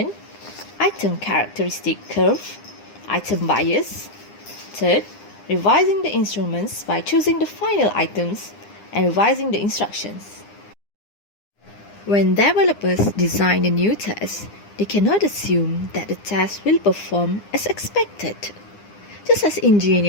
item characteristic curve, item bias. Third, revising the instruments by choosing the final items and revising the instructions. When developers design a new test, they cannot assume that the test will perform as expected. Just as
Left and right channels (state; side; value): late; right; 9.8 ms